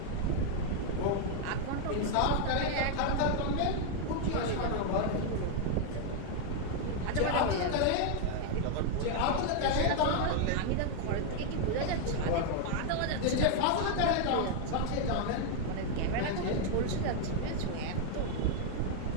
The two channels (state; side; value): different; both; correlation 0.00